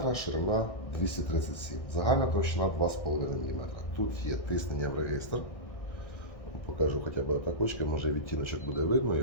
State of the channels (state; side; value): late; right; 1.6 ms